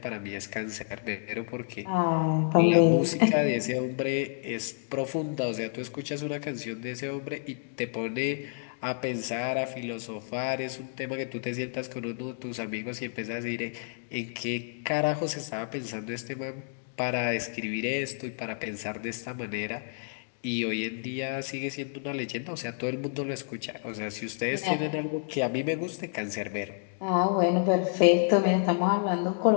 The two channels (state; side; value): silent; right; digital silence